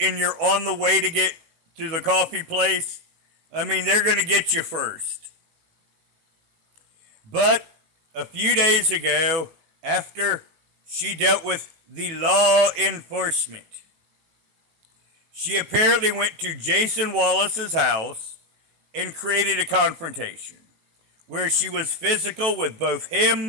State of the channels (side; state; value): left; late; 18 ms